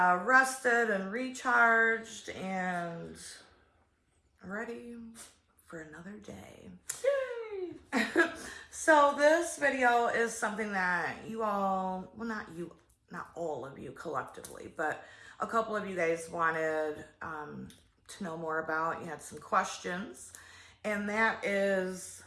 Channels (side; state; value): both; identical; correlation 1.00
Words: rested and recharged and ready for another day. Yay! So this video is something that you all, well, not all of you collectively, but a couple of you guys wanted to know more about. You had some questions, and that is